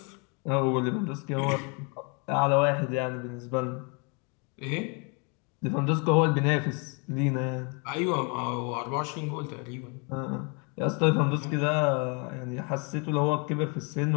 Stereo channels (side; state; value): right; quieter; 34.4 dB